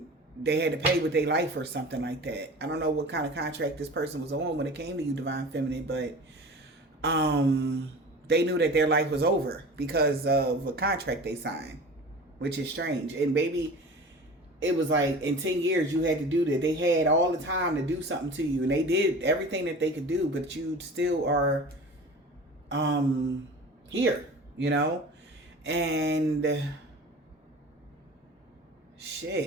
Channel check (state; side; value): normal; both; correlation 0.37